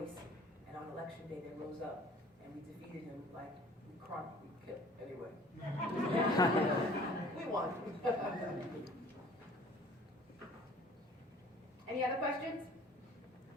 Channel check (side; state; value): both; normal; correlation 0.50